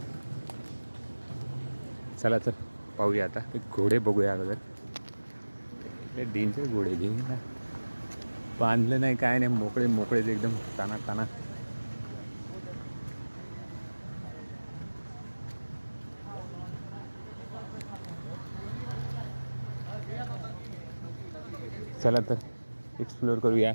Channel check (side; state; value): both; inverted; correlation -1.00